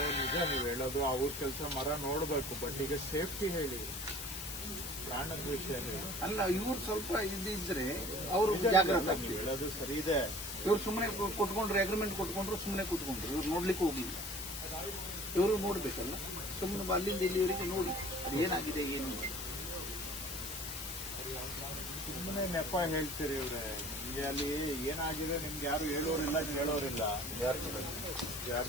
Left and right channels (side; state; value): left; noise; hiss, 6 dB below the sound